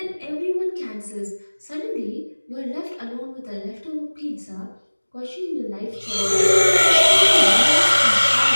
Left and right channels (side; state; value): both; inverted; correlation -1.00